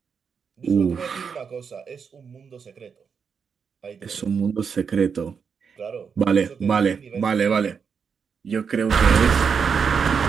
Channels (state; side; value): quieter; left; 6.3 dB